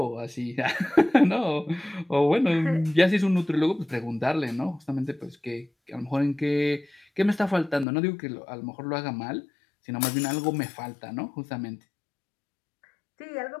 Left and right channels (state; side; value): drops out; right; at 7.9 s